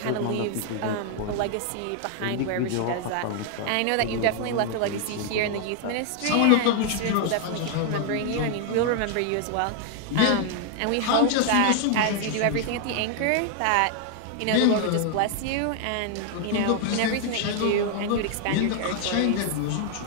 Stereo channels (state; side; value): different; both; correlation 0.00